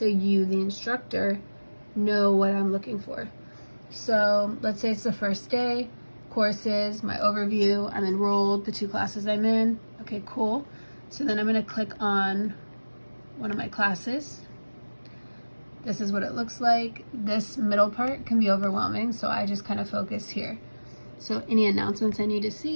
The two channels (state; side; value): inverted; both; correlation -1.00